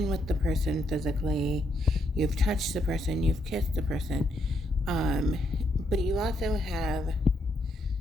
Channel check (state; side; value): normal; both; correlation 0.76